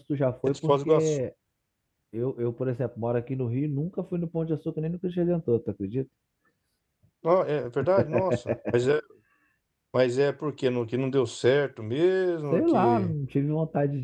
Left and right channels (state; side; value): identical; both; correlation 1.00